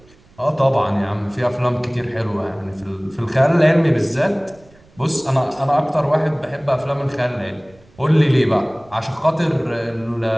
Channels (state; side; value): noise; right; rumble, 28 dB below the sound